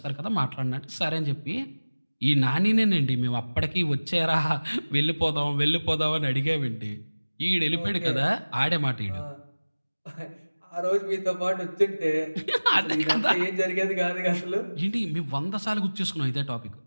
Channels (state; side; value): inverted; both; correlation -1.00